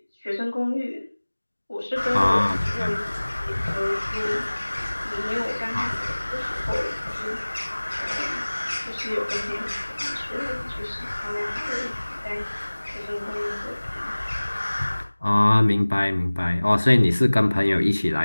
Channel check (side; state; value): both; inverted; correlation -1.00